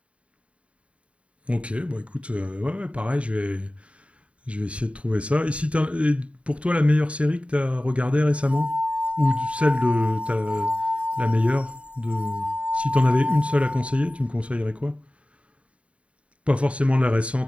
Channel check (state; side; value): late; left; 0.063 ms